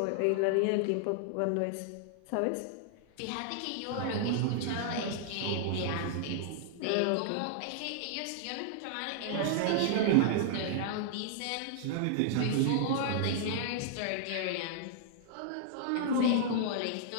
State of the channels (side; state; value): both; different; correlation -0.01